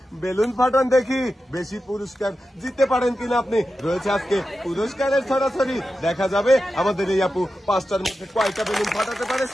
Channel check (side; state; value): both; normal; correlation 0.91